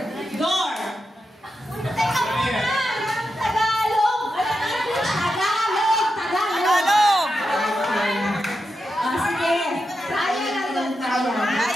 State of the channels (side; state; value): both; normal; correlation 0.88